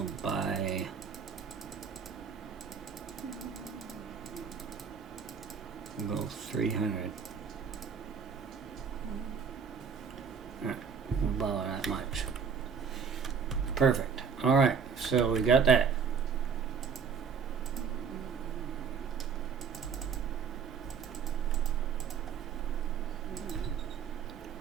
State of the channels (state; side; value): quieter; left; 6.3 dB